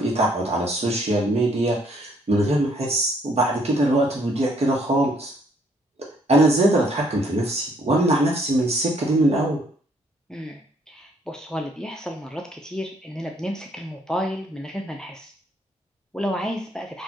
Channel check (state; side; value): normal; both; correlation 0.66